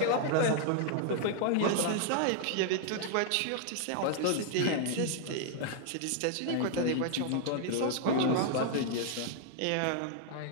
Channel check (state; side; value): different; both; correlation -0.01